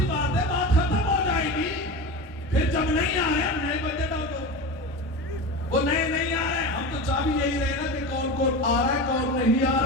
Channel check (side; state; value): both; normal; correlation 0.26